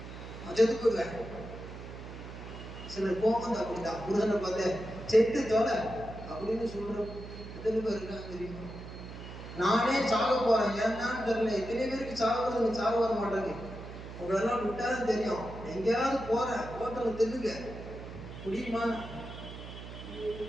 செத்து போடுவேன். சிலர் போகுது அப்படிதான். முருகனை பார்த்து செத்து தொலை அப்படின்னு சொல்ற எத்தனை பேர் இருக்காங்க தெரியுமா? நானே சாக போறேன், ஏன்னான்னு தெரியல. எத்தனை பேருக்கு சாக வர மாட்டாங்க. உங்களெல்லாம் விட்டாலும் தெரியும். எங்கேயாவது போறேன், ஹோட்டல்ல தின்னுங்க முடியுமா?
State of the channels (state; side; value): noise; right; hum, 12 dB below the sound